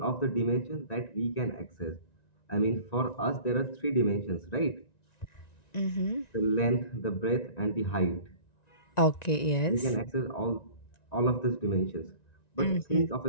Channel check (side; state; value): right; late; 1.9 ms